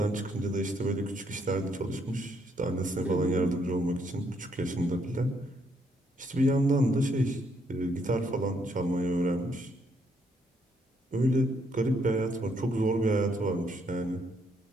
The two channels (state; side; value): normal; both; correlation 0.72